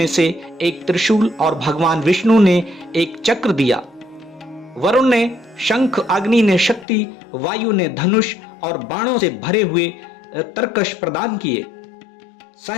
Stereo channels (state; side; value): drops out; right; at 6.9 s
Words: से एक त्रिशूल और भगवान विष्णु ने एक चक्र दिया। वरुण ने शंख, अग्नि ने शक्ति, वायु ने धनुष और बाणों से भरे हुए तरकश प्रदान किए।